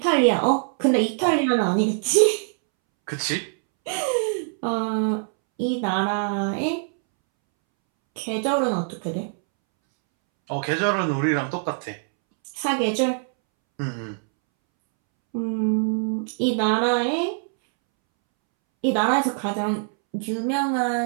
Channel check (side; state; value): left; silent; 63 dB below the other